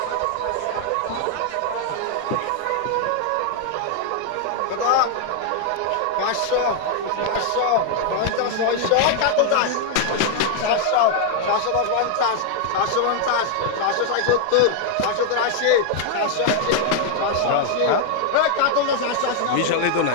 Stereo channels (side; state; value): both; different; correlation 0.00